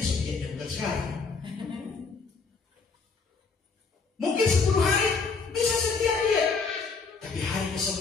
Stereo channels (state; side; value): quieter; right; 4.7 dB